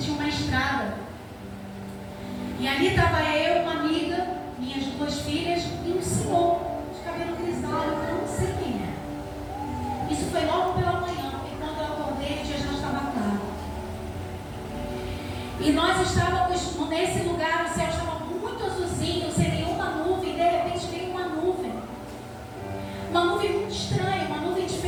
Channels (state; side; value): identical; both; correlation 1.00